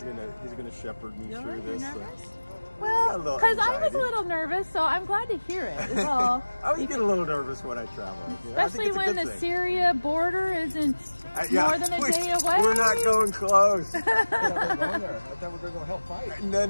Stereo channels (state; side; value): inverted; both; correlation -1.00